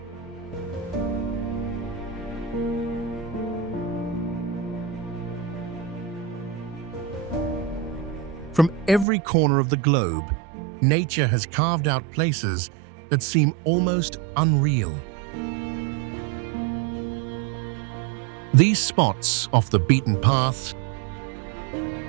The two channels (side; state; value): left; drops out; at 9.1 s